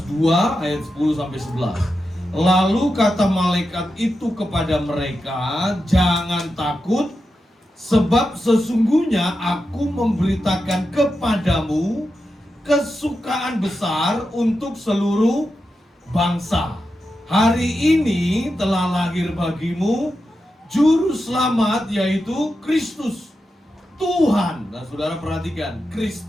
2 ayat 10 sampai 11. Lalu kata malaikat itu kepada mereka, jangan takut, sebab sesungguhnya aku memberitakan kepadamu kesukaan besar untuk seluruh bangsa. Hari ini telah lahir bagimu juru selamat, yaitu Kristus Tuhan. Nah saudara perhatikan,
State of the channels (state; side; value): normal; both; correlation 0.89